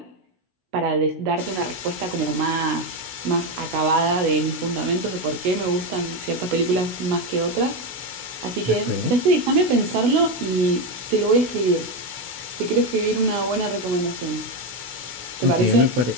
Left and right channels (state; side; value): late; left; 16 ms